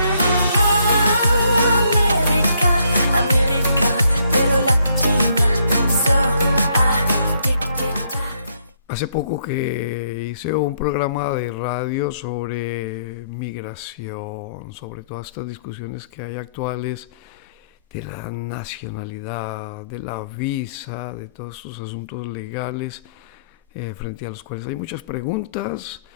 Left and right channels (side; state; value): both; inverted; correlation -0.70